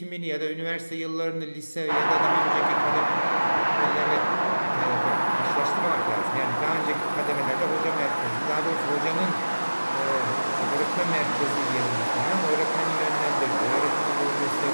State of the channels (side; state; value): both; inverted; correlation -1.00